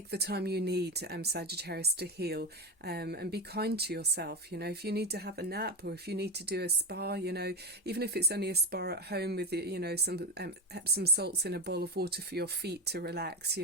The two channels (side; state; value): both; normal; correlation 0.14